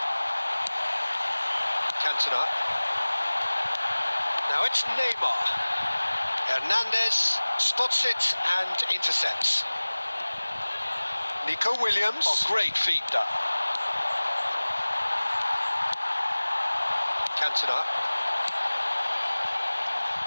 Cantona. Now it's Neymar. Hernandez spots it and intercepts. Nico Williams. Oh, great feat, that. Cantona.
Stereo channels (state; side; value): inverted; both; correlation -1.00